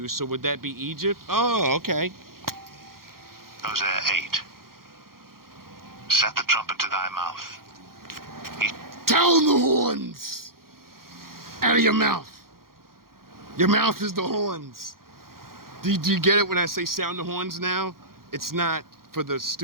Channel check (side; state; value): left; late; 0.92 ms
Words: so would that be Egypt? Oh, okay. Hosea 8. Set the trumpet to thy mouth. Sound the horns out of your mouth. Your mouth is the horns. Do you get it when I say sound the horns now? It's not for the